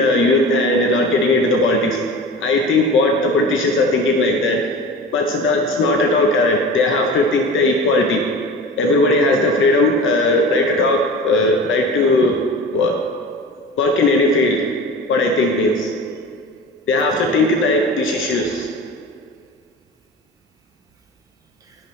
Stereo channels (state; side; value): normal; both; correlation 0.35